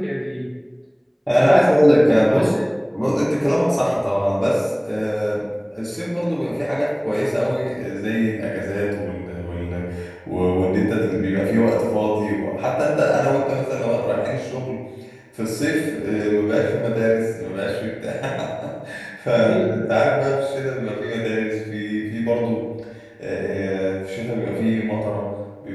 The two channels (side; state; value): both; identical; correlation 1.00